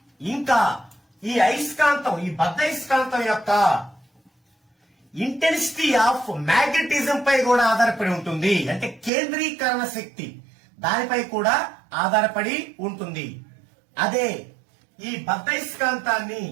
ఇంకా ఈ అయస్కాంతం, ఈ బద్ధయస్కాంతం యొక్క ఇంటెన్సిటీ ఆఫ్ మ్యాగ్నెటిజం పై కూడా ఆధారపడి ఉంటుంది. అంటే కేంద్రీకరణ శక్తి దానిపై కూడా ఆధారపడి ఉంటుంది. అదే ఈ బద్ధయస్కాంతాన్ని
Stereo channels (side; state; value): left; drops out; at 9.1 s